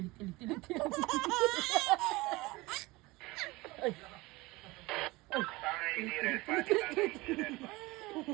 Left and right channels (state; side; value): quieter; left; 21.7 dB